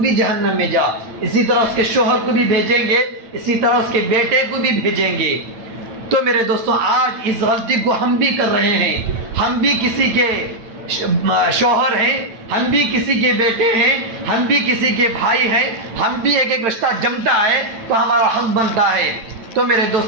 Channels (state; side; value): late; left; 8.9 ms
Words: جہنم میں جا۔ اسی طرح اس کے شوہر کو بھی بھیجیں گے، اسی طرح اس کے بیٹے کو بھی بھیجیں گے۔ تو میرے دوستوں، آج اس غلطی کو ہم بھی کر رہے ہیں، ہم بھی کسی کے شوہر ہیں، ہم بھی کسی کے بیٹے ہیں، ہم بھی کسی کے بھائی ہیں، ہم بھی ایک رشتہ جمتا ہے تو ہمارا حق بنتا ہے۔ تو میرے